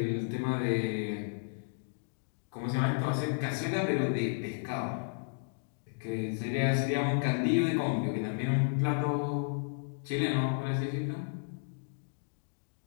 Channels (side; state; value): right; silent; digital silence